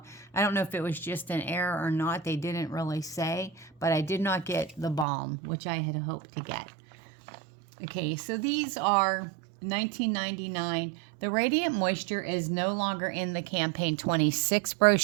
I don't know if it was just an error or not. They didn't really say. But I did not get the balm, which I had hoped to get. Okay, so these are $19.99. The Radiant Moisture is no longer in the campaign 26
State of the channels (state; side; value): drops out; left; at 5.1 s